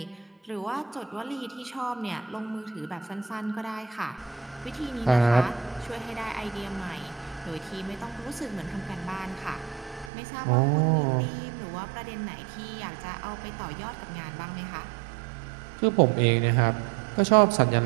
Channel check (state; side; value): drops out; left; at 10.1 s